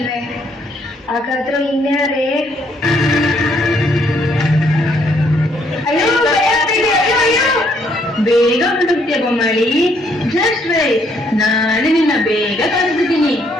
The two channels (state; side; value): normal; both; correlation 0.69